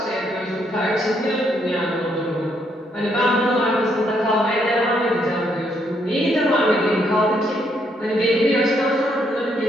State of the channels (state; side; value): normal; both; correlation 0.73